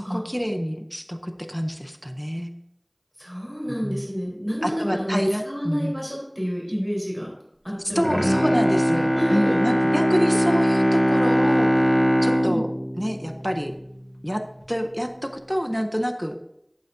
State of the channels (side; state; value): both; identical; correlation 1.00